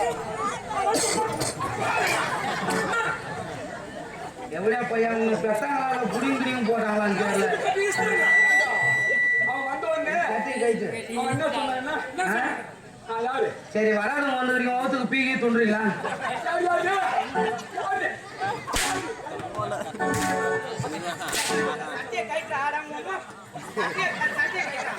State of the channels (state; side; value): identical; both; correlation 1.00